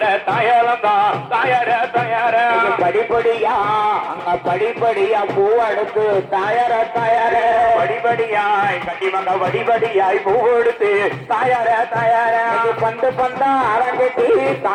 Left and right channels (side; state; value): both; identical; correlation 1.00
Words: தாயலந்தோம் தாயர தயார படிப்படியா அங்க படிப்படியா பூ எடுத்து தாயர தயார படிப்படியாய் கண்டிப்பாக படிப்படியாய் பூ எடுத்து தாயர தயார பந்து பந்தா அரங்கட்டி